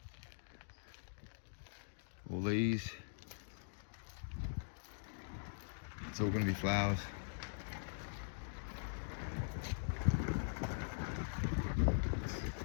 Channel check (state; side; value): silent; right; digital silence